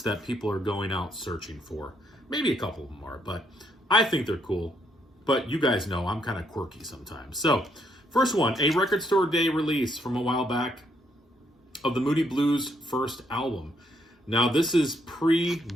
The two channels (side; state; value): both; normal; correlation 0.73